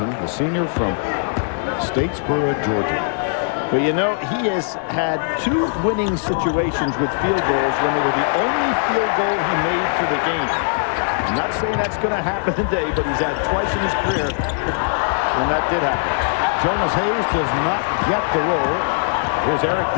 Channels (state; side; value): silent; right; digital silence